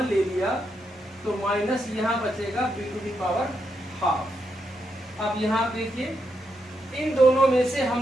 ले लिया तो माइनस यहाँ बचेगा B to the power half. अब यहाँ देखिए इन दोनों में से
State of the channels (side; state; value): both; normal; correlation 0.82